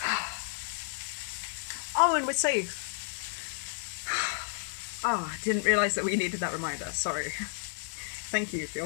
Oh, and we're safe. Ah, oh, didn't realise that we needed that reminder, sorry. Thank you for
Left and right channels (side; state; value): right; silent; digital silence